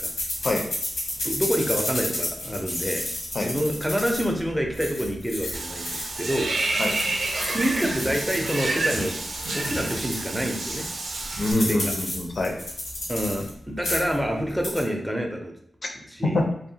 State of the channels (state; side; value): normal; both; correlation 0.92